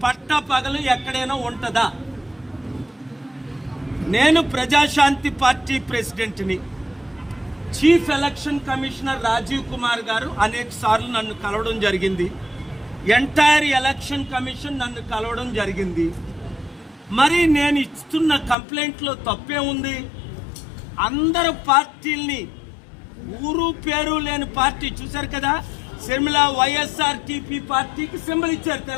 పట్టపగలు ఎక్కడైనా ఉంటుందా? నేను ప్రజాశాంతి పార్టీ ప్రెసిడెంట్ని. Chief election commissioner Rajiv Kumar garu అనేక సార్లు నన్ను కలవడం జరిగింది. ఎంటైర్ ఎలక్షన్ కమిషన్ నన్ను కలవడం జరిగింది. మరి నేను ఇస్తున్న కంప్లైంట్లో తప్పే ఉంది? అందరు పార్టీల్ని, ఊరు పేరు లేని పార్టీ చూశారు కదా, షర్మిల వైఎస్ఆర్టీపీ పార్టీకి సింబల్ ఇచ్చారు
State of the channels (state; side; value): drops out; right; at 18.6 s